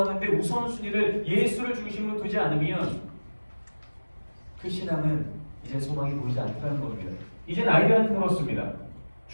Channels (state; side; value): inverted; both; correlation -1.00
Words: 우선순위를 예수를 중심으로 두지 않으면 그 신앙은 이제 소망이 보이지 않다는 겁니다. 이젠 아이들한테 물었습니다.